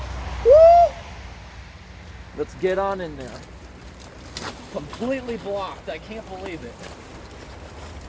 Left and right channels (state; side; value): identical; both; correlation 1.00